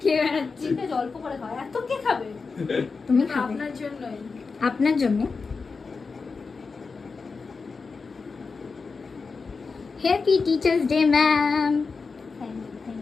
খেয়ে বেড়াচ্ছি। চিন্তা অল্প করে খাও, এত কে খাবে? তুমি খাবে আপনার জন্যই। আপনার জন্য। Happy teachers day ma'am. Thank you, thank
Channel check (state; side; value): quieter; right; 4.6 dB